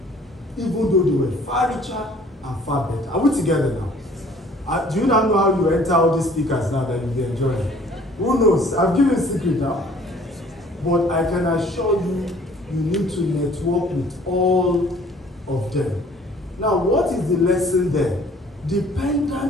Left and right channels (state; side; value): normal; both; correlation 0.55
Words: even though they were far richer and far better. Are we together now? Do you now know how you enter all these speakers now that you'll be enjoying? Who knows? I've given a secret now. But I can assure you, you need to network with all of them. Now, what is the lesson there?